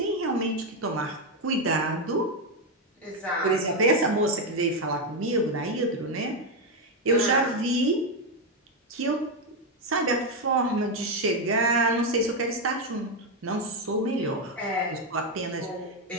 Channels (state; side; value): normal; both; correlation 0.06